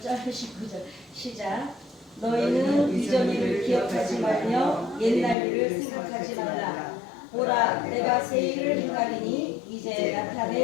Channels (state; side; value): drops out; right; at 5.4 s